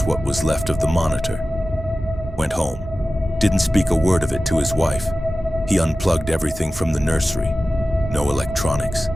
what was left of the monitor. Went home. Didn't speak a word of it to his wife. He unplugged everything from the nursery. No electronics,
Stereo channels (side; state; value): both; normal; correlation 0.95